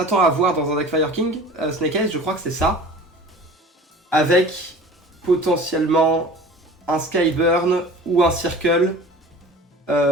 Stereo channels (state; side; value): normal; both; correlation 0.41